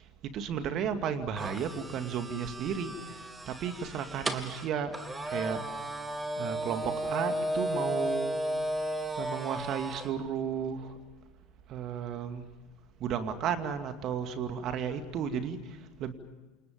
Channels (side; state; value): left; quieter; 4.4 dB